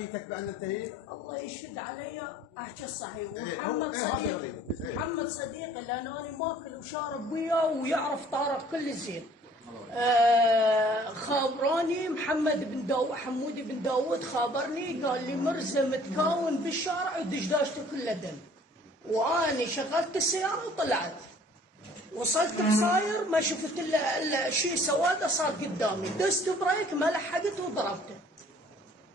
بان انتهيت؟ الله يشهد علي احكي الصحيح. إيه، ومحمد هو- إيه، هذا صديقي غريب. إيه. محمد صديقي لان انا ماكل وشارب وياه ويعرف طارق كل زين. خابراني محمد بن داوود، حمودي بن داوود خابرني قال لي مرزا متكون بالشارع ودشداشته كلها دم. واني شغلت السياره وطلعت، وصلت بصاير ما شفت الا شيء سواده صار قدامي، دست بريك ما لحقت وضربته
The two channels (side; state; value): both; normal; correlation 0.55